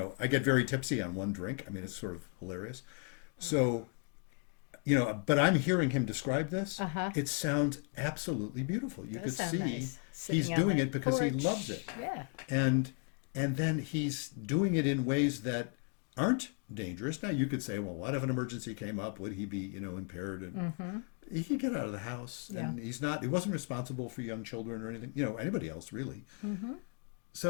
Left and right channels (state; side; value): quieter; right; 38.6 dB